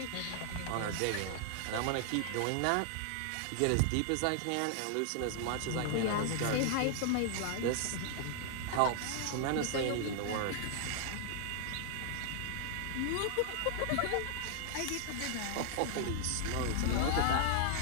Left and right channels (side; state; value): both; different; correlation 0.00